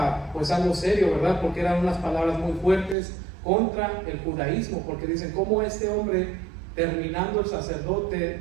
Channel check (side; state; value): left; drops out; at 3.0 s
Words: pues algo serio, ¿verdad?, porque eran unas palabras muy fuertes contra el judaísmo, porque dicen: ¿cómo este hombre, terminando el sacerdote